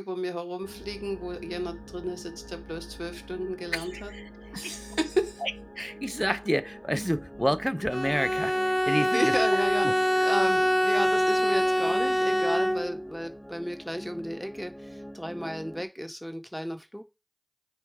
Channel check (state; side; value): identical; both; correlation 1.00